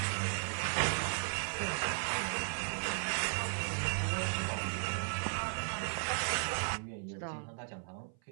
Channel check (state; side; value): silent; left; 54 dB below the other